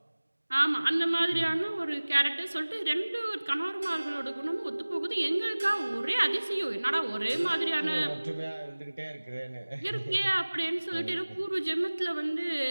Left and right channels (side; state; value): both; inverted; correlation -1.00